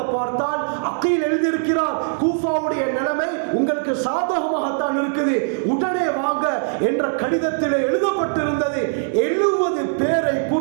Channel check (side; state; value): left; silent; digital silence